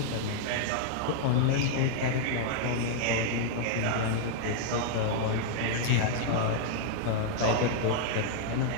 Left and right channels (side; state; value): both; different; correlation -0.01